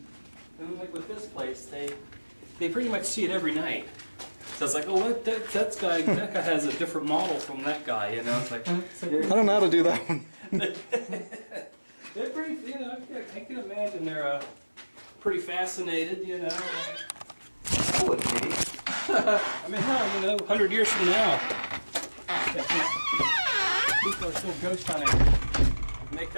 like with this place, they pretty much see it every night. So it's like, oh, what that guy has a different model from that guy. You know, it's like I don't know how to do that one. They're pretty, you know, I can imagine they're pretty fascinated, you know. I would be. I mean, hell, you know, 100 years from now, people are still ghost hunting. And they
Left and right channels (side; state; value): both; inverted; correlation -1.00